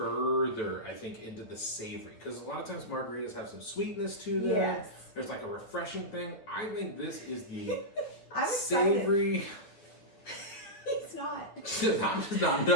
I think, into the savory, because a lot of times margaritas have some sweetness to them. Yes. There's like a refreshing thing. I think this is the I'm savory. He's not. I'm just not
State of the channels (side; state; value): right; late; 9.7 ms